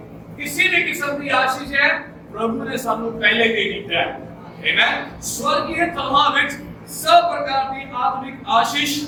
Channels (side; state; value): both; identical; correlation 1.00